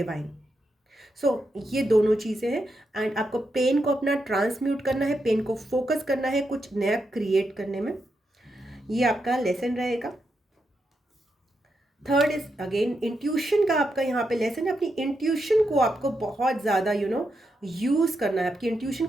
So ये दोनों चीज़ें हैं एंड आपको पेन को अपना ट्रांसम्यूट करना है, पेन को फोकस करना है कुछ नया क्रिएट करने में। ये आपका लेसन रहेगा। थर्ड इज अगेन इंट्यूशन का आपका यहाँ पे लेसन है। अपनी इंट्यूशन को आपको बहुत ज़्यादा यूज़ करना है, आपकी इंट्यूशन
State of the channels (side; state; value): both; normal; correlation 0.84